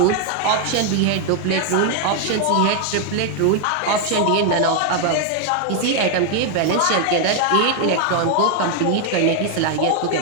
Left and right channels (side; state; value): both; different; correlation 0.00